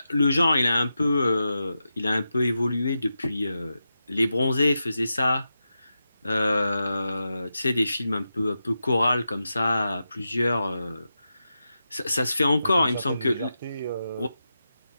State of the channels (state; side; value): inverted; both; correlation -0.90